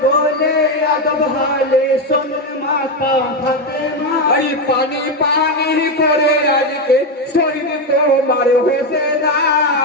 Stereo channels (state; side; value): normal; both; correlation 0.09